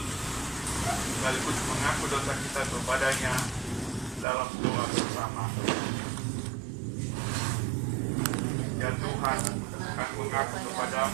sekaligus mengaku dosa kita kepadanya dalam doa bersama. Ya Tuhan, kami mengaku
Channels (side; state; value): left; drops out; at 4.2 s